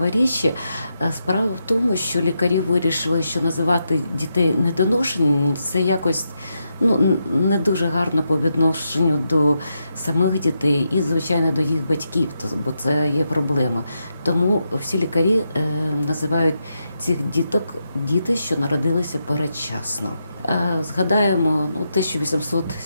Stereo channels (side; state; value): both; inverted; correlation -0.84